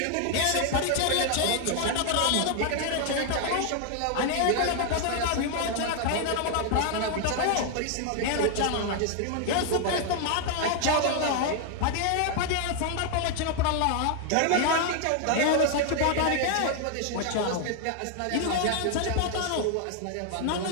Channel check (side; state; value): both; different; correlation 0.00